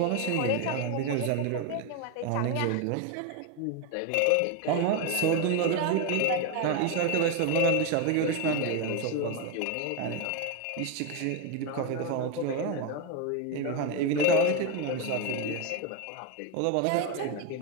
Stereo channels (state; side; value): different; both; correlation 0.02